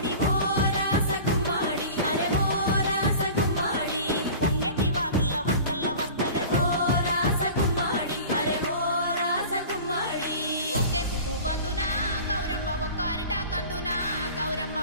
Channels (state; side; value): inverted; both; correlation -0.39